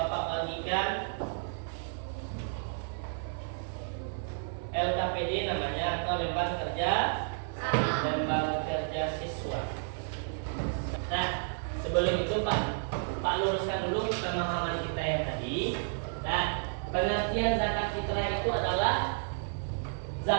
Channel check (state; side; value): silent; left; 55 dB below the other